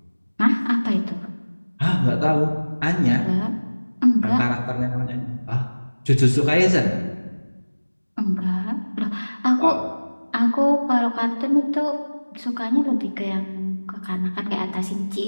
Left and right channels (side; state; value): both; inverted; correlation -1.00